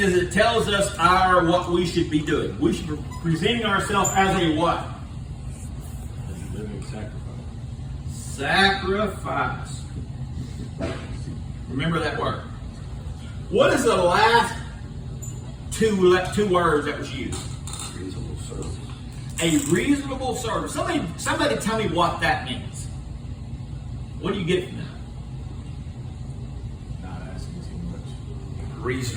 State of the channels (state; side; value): identical; both; correlation 1.00